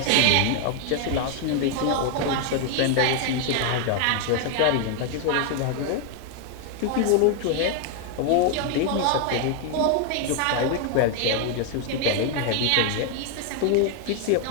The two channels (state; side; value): different; both; correlation 0.00